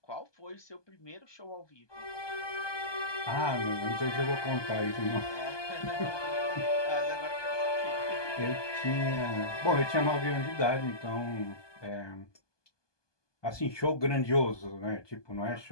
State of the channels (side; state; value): right; late; 1.2 ms